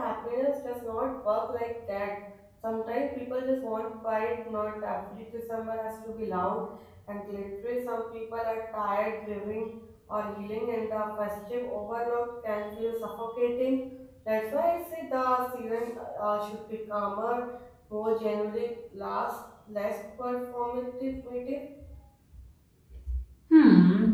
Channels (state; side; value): identical; both; correlation 1.00